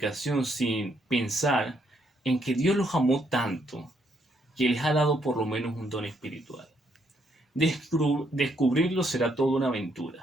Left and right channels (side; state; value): both; normal; correlation 0.73